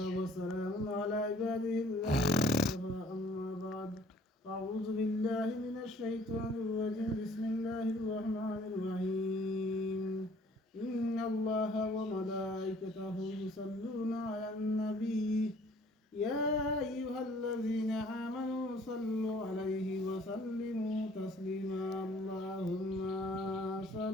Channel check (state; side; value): normal; both; correlation 0.57